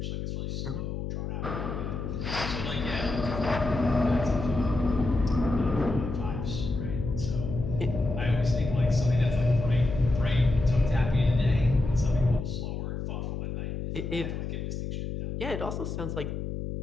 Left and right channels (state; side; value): noise; left; hum, 5 dB below the sound